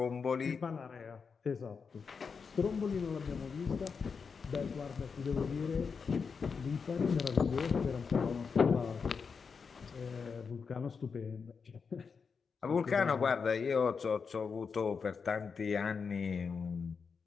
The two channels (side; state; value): right; quieter; 5.6 dB